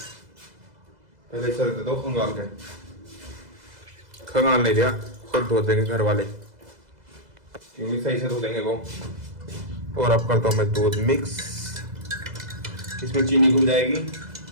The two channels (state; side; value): late; left; 2.0 ms